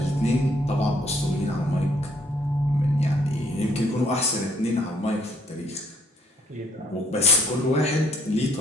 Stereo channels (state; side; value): normal; both; correlation 0.67